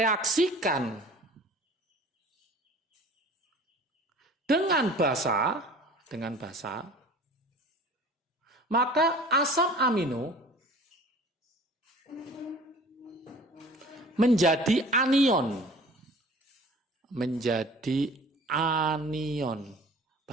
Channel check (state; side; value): normal; both; correlation 0.45